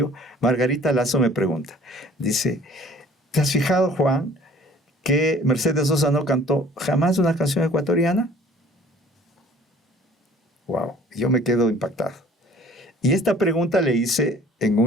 Margarita Lazo me pregunta, dice, ¿te has fijado, Juan, que Mercedes Sosa no cantó jamás una canción ecuatoriana? Wow, yo me quedo impactado. Y esta pregunta le hice en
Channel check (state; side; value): normal; both; correlation 0.52